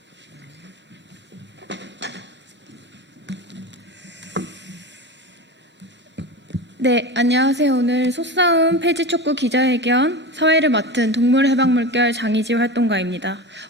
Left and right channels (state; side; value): normal; both; correlation 0.26